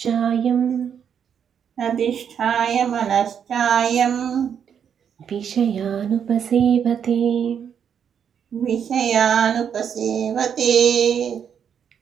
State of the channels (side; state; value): left; quieter; 8.0 dB